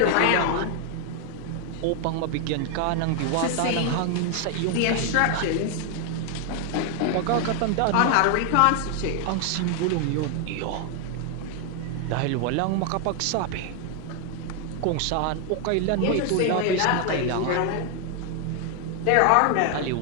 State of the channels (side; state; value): both; different; correlation 0.00